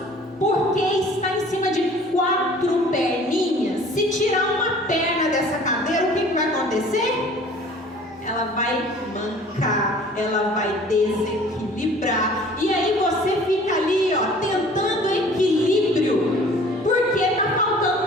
porque está em cima de 4 perninhas. Se tirar uma perna dessa cadeira, o que vai acontecer? Ela vai mancar, ela vai desequilibrar. E aí você fica ali, ó, tentando equilíbrio, porque está faltando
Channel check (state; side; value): normal; both; correlation 0.49